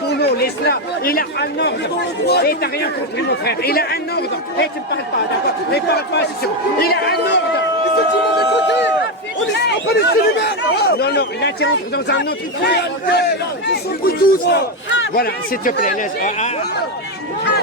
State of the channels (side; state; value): both; normal; correlation 0.08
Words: Laisse-la. Il a un ordre. Et t'as rien compris, mon frère. Il a un ordre. Et tu ne parles pas, d'accord? Ne parle pas, c'est sûr. Il a un ordre. On est pas les célibataires! Non, non, là tu entres dans un autre truc. Ils sont tous là! Voilà, s'il te plaît, laisse.